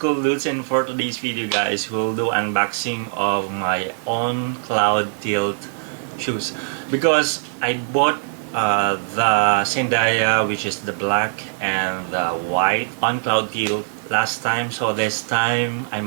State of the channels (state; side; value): silent; left; digital silence